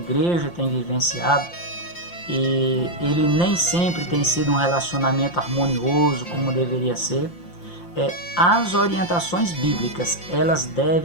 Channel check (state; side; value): late; right; 5.8 ms